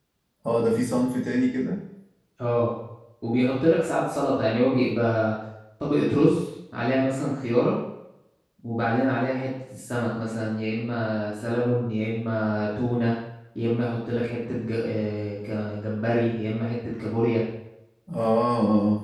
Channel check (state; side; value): identical; both; correlation 1.00